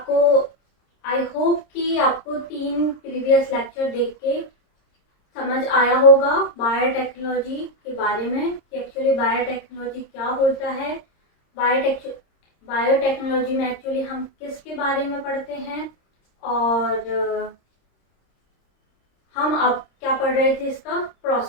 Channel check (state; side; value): late; right; 26 ms